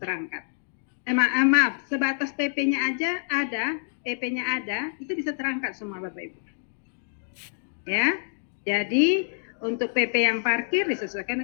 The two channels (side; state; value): right; silent; digital silence